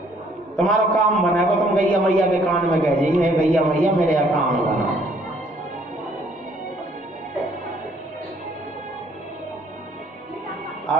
तुम्हारा काम बनेगा तुम गैया मैया के कान में कह जाइए, गैया मैया मेरे यहाँ काम बना।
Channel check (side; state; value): both; normal; correlation 0.63